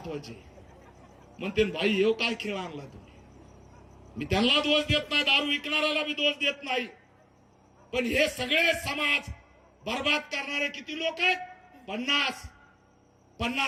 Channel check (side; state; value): both; identical; correlation 1.00